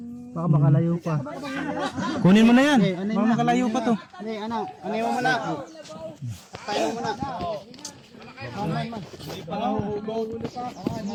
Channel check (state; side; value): identical; both; correlation 1.00